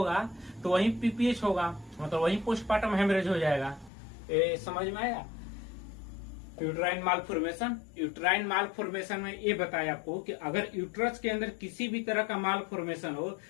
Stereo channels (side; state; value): right; drops out; at 3.9 s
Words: तो वहीं पीपीएच होगा, मतलब वहीं पोस्टपार्टम हेमरेज हो जाएगा। समझ में आया। यूट्राइन मालफॉर्मेशन, यूट्राइन मालफॉर्मेशन में ये बताया आपको कि अगर यूट्रस के अंदर किसी भी तरह का मालफॉर्मेशन हो,